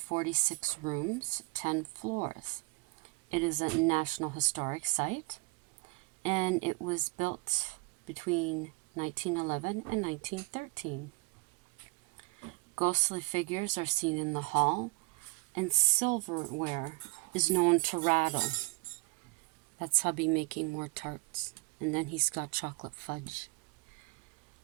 rooms, 10 floors. It is a National Historic Site, and it was built between 1911 and 1913. Ghostly figures are seen in the hall, and silverware is known to rattle. That's hubby making more tarts. And then he's got chocolate fudge.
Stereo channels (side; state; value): left; quieter; 27.7 dB